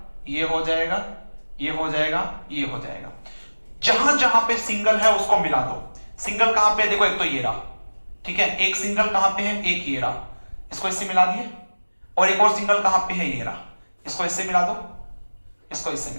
ये हो जाएगा, ये हो जाएगा, ये हो जाएगा। जहां जहां पे सिंगल है उसको मिला दो। सिंगल कहां पे, देखो एक तो ये रहा, ठीक है। एक सिंगल कहां पे है, एक ये रहा, इसको इससे मिला दिए। और एक और सिंगल कहां पे है, ये रहा, इसको इससे मिला दो, इसको इससे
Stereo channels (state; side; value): inverted; both; correlation -1.00